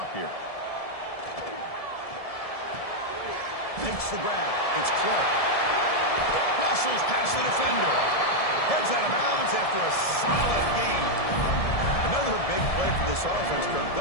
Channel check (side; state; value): right; late; 1.7 ms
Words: here. Makes the grab. It's Clark. Muscles past the defender. Heads out of bounds after a solid game. Another big play for this offense, Kirk.